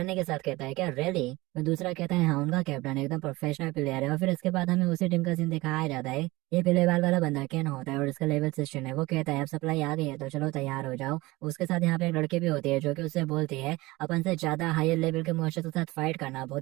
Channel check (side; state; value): left; quieter; 20.9 dB